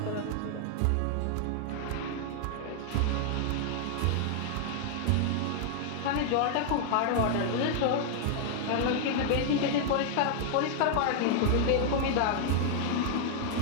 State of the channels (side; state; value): both; different; correlation 0.00